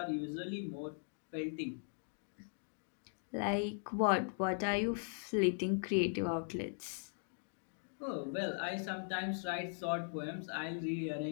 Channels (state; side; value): silent; right; digital silence